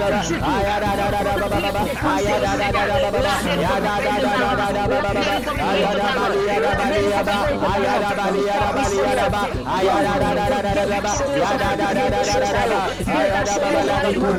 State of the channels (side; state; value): both; identical; correlation 1.00